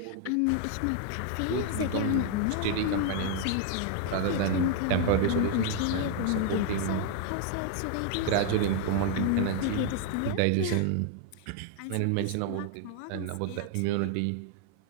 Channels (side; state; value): both; different; correlation 0.00